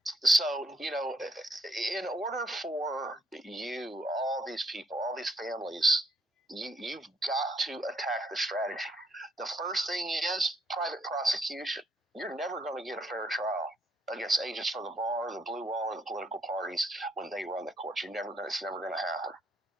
so, in order for you, all these people, all these families, you've got to attack the strategy. The first thing is private prosecution. You're never going to get a fair trial against agents for the bar, the blue wall, or the political parties when they run the courts. It's never going to happen.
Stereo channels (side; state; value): both; normal; correlation 0.71